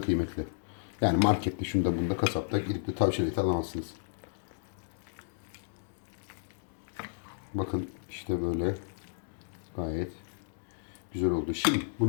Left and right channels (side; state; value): right; silent; digital silence